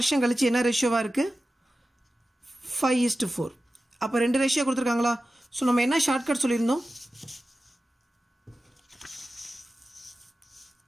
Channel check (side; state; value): both; normal; correlation 0.94